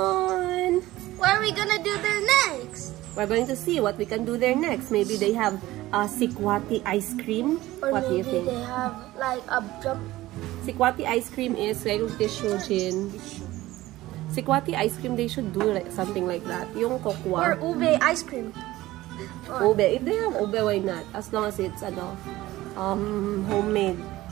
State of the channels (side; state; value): left; quieter; 17.0 dB